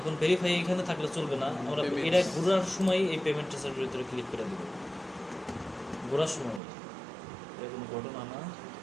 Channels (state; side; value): drops out; left; at 6.6 s